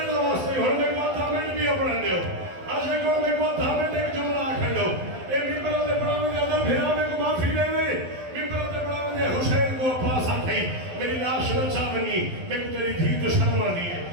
دا واسطے اور میں کو تھامنٹ بھی اپنے دیو آج میں کو تھامنٹ ایک جملہ آکھن دو ایک ممبر تے پڑھا میں ادھر بھیرا میں کو معافی دے دے ممبر تے پڑھا میں حسین کو عباس آکھئی میری لاش نچا بنی میں کو تیری دھی تو شرم آدھی ہے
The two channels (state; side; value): late; left; 12 ms